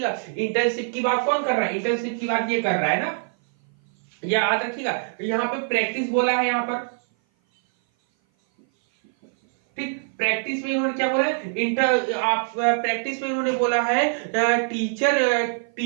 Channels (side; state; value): left; silent; 57 dB below the other